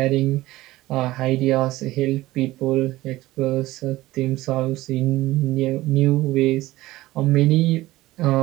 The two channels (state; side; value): quieter; left; 17.5 dB